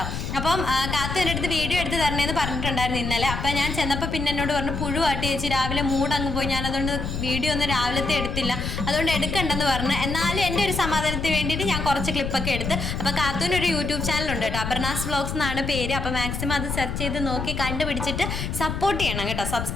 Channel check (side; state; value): left; noise; rumble, 4 dB below the sound